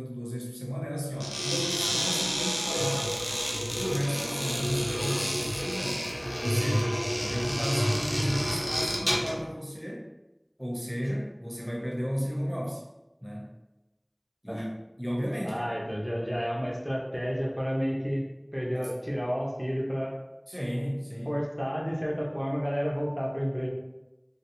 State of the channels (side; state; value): both; identical; correlation 1.00